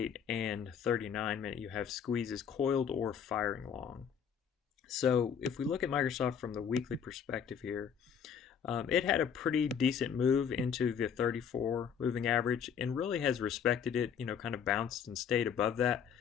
and 39 minute, you have squeezes coiled or firing long. So if we look at Microsoft from the weekly perspective here, it had a pretty decent move into the 34 moving average and really has respected it, kind of bounced and stayed above that,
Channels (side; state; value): right; quieter; 7.6 dB